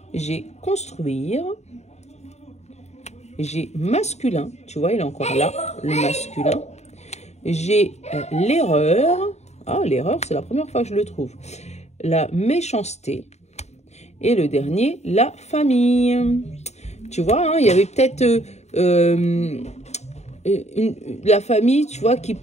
J'ai construire. j'ai masculin, tu vois, il est encore là, le masculin. J'ai l'erreur, ah l'erreur c'est la première fois que je le trouve, la méchanceté. Et le dernier, la famille. Tu vois, hein, il y avait peut-être la famille, tu vois, qui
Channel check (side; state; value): right; late; 0.32 ms